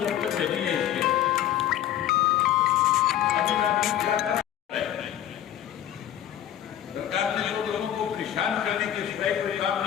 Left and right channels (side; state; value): right; quieter; 11.3 dB